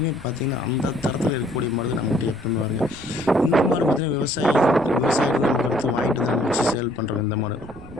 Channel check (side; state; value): right; noise; rumble, 20 dB below the sound